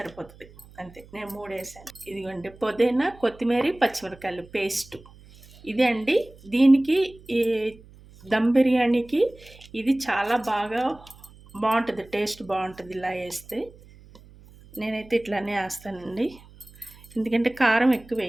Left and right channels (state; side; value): noise; right; hum, 23 dB below the sound